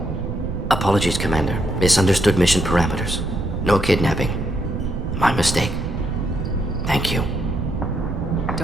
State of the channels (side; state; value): right; noise; rumble, 5 dB below the sound